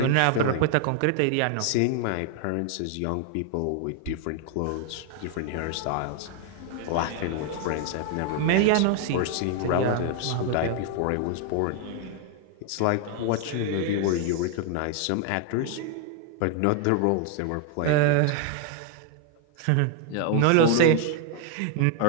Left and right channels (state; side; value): different; both; correlation 0.00